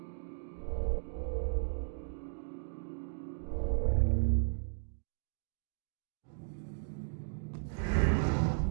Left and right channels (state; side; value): silent; left; digital silence